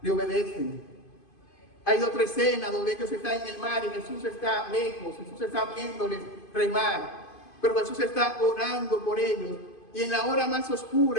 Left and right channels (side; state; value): right; late; 2.5 ms